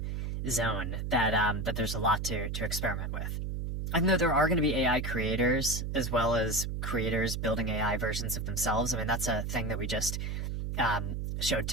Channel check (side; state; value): right; noise; hum, 3 dB below the sound